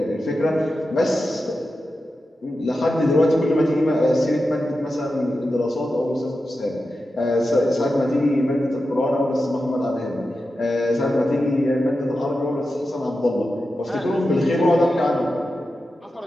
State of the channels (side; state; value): both; normal; correlation 0.91